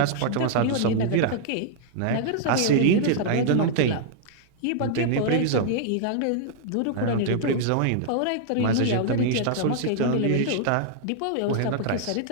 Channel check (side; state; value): both; different; correlation -0.01